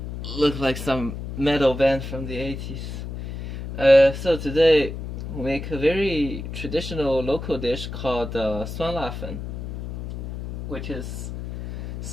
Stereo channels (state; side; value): noise; left; hum, 8 dB below the sound